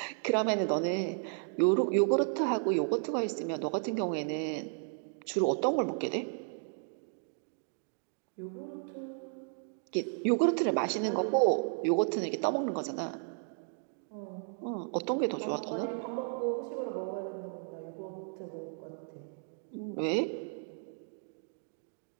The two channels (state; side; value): silent; left; 55 dB below the other